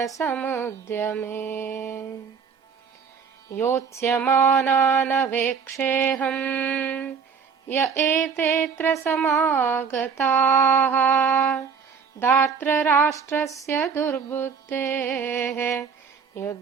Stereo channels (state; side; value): quieter; left; 6.2 dB